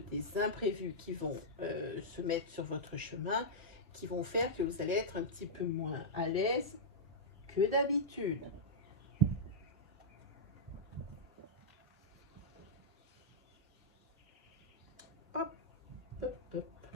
imprévus qui vont se mettre sur votre chemin, qui vont faire que vous allez être un petit peu moins à l'aise que d'habitude. Hop, hop, hop.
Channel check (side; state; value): both; normal; correlation -0.10